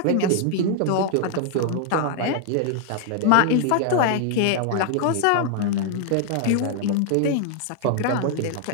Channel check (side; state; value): both; different; correlation 0.00